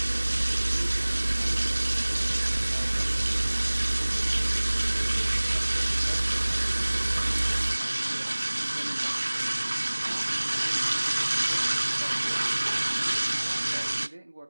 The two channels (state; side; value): inverted; both; correlation -1.00